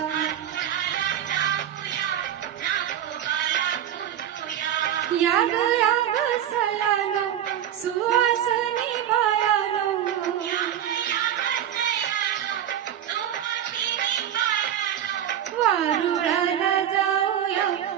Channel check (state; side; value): quieter; left; 10.3 dB